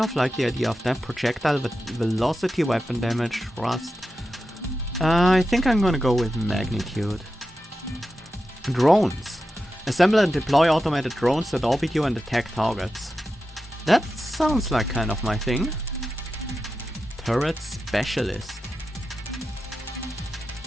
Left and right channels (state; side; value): normal; both; correlation 0.91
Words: of like the idea of that. Projectile velocity, weapon damage, thrust. I think I'm gonna go with Magnitude. Drones. Assemble and deploy automated drones that orbit you and attack targets. That sounds like kind of my thing. Turret Specialist.